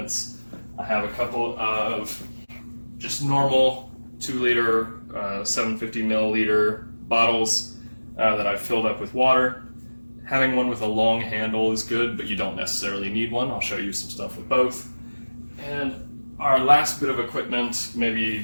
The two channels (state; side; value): inverted; both; correlation -1.00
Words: I have a couple of just normal 2-liter, 750 milliliter bottles that I've filled up with water. Having one with a long handle is good, but you don't necessarily need one. I'll show you some stuff with both. And our last bit of equipment,